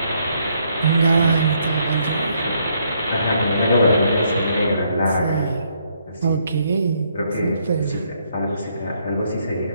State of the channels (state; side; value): inverted; both; correlation -0.72